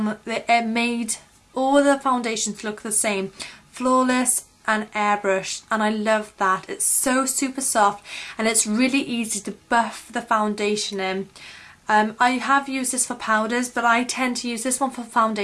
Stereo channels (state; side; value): identical; both; correlation 1.00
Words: it made all the foundations look the same, flawless and airbrushed, and I love that. It's so super soft and it's really easy to buff the foundation in. I have used this for powders, but I tend to use this one for